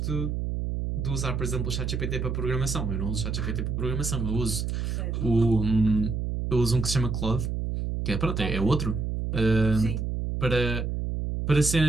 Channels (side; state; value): right; noise; hum, 2 dB below the sound